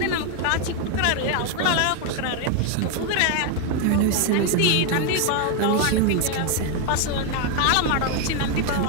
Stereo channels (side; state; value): both; different; correlation 0.01